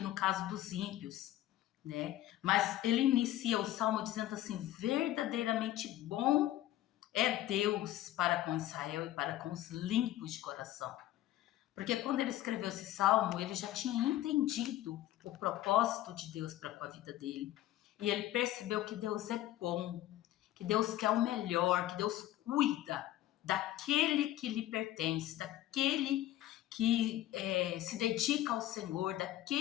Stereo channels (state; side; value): quieter; right; 14.3 dB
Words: caso dos ímpios, né? Mas ele inicia o salmo dizendo assim: verdadeiramente bom é Deus para com Israel e para com os limpos de coração. Porque quando ele escreveu esse salmo, ele já tinha entendido o propósito de Deus para com a vida dele. E ele percebeu que Deus é bom, que Deus quer o melhor, que Deus cuida daquele que lhe pertence, daquele que se dedica ao Senhor,